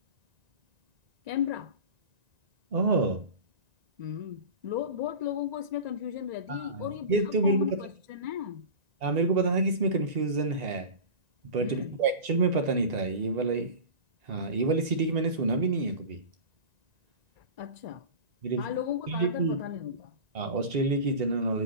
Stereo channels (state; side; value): late; left; 1.9 ms